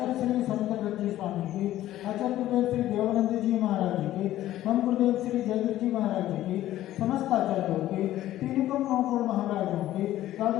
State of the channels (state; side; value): quieter; right; 13.9 dB